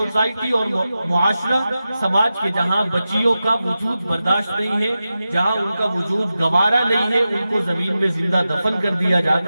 اور معاشرہ، سماج کے جہاں بچیوں کا وجود برداشت نہیں ہے، جہاں ان کا وجود گوارا نہیں ہے، ان کو زمین میں زندہ دفن کر دیا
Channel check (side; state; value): both; inverted; correlation -0.93